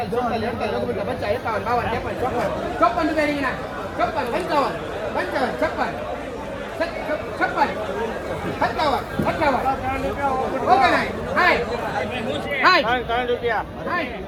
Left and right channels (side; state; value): both; identical; correlation 1.00